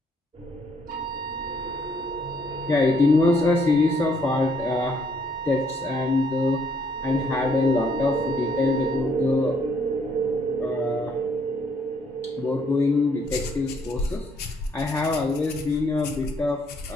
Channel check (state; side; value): normal; both; correlation 0.68